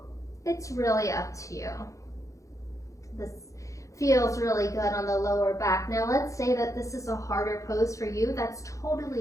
It's really up to you. This feels really good on the lower back. Now let's say that this is a harder pose for you. That's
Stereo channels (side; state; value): right; late; 0.15 ms